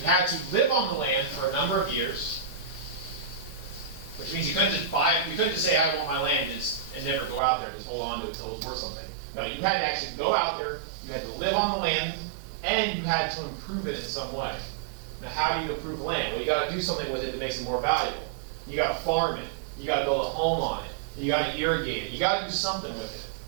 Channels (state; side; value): drops out; left; at 7.4 s